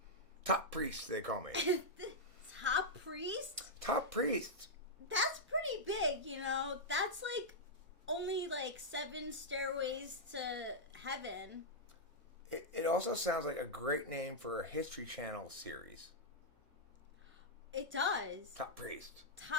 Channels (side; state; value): left; late; 1.0 ms